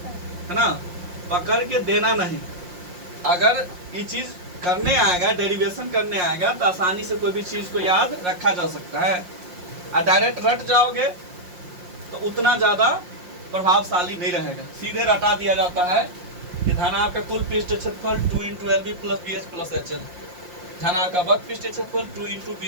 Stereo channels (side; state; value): left; late; 5.6 ms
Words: है ना, पकड़ के देना नहीं। अगर ये चीज करने आएगा, डेरिवेशन करने आएगा तो आसानी से कोई भी चीज को याद रखा जा सकता है। और डायरेक्ट रट जाओगे तो उतना ज्यादा प्रभावशाली नहीं रहेगा। सीधे रटा दिया जाता है कि धनाभ का कुल पृष्ठीय क्षेत्रफल 2 into LB plus BH plus HL। धनाभ का वक्र पृष्ठीय क्षेत्रफल 2 इंटू